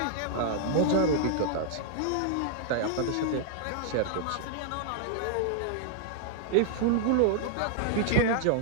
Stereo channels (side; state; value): both; different; correlation -0.01